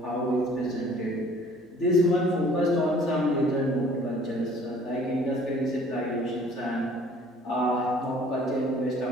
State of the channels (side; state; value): both; normal; correlation 0.54